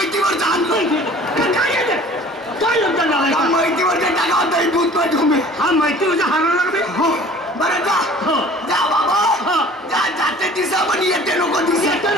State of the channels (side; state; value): both; normal; correlation 0.48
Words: आणलं. काय लग्न झालं? माहितीवरच्या टाका दूध पाठवून. हा माहितीवरच्या हाराला लागले. बरं जा. जा बाबा जा. जाते दिसा पण येते नको दिसा. येते